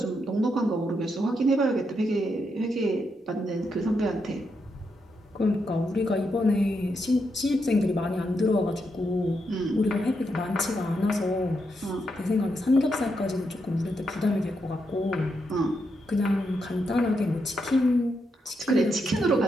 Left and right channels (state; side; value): normal; both; correlation 0.82